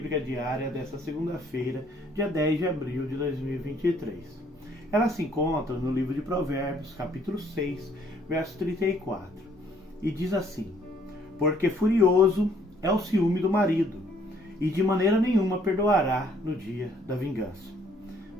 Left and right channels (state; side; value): normal; both; correlation 0.64